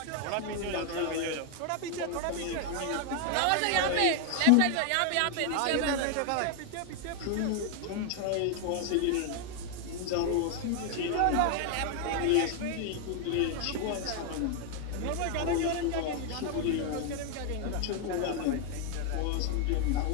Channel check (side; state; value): both; different; correlation 0.00